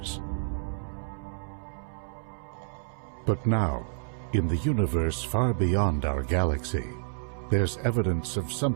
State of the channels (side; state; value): left; silent; 58 dB below the other